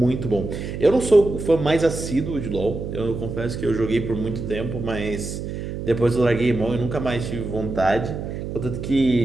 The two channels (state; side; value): noise; right; hum, 6 dB below the sound